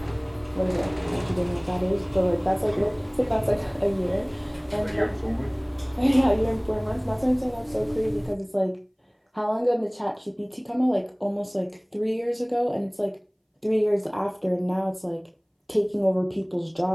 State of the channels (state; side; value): identical; both; correlation 1.00